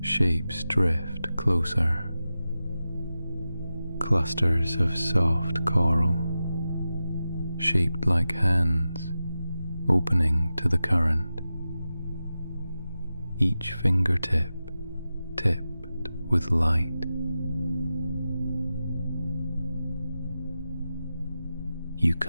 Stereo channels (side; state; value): both; inverted; correlation -0.93